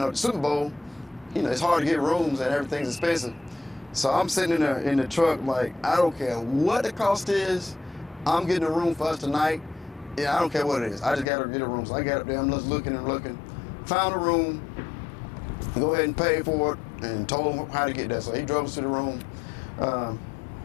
Super Bowl, it's hard to get rooms and everything's expensive. So I'm sitting in the truck like, I don't care what the cost is. I'm getting a room for us tonight. Yeah, I don't care what it is. I just got to get a room. So I got up there, I'm just looking and looking. Found a room, go ahead and pay for it, and told him how to get there. So he drove us to the room.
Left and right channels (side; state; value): right; drops out; at 11.2 s